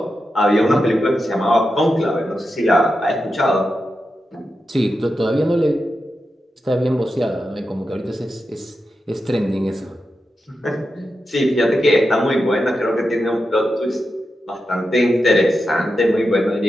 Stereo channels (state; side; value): normal; both; correlation 0.89